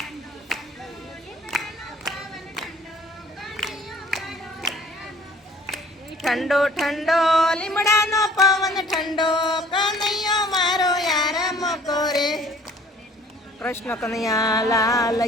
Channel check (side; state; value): both; normal; correlation 0.53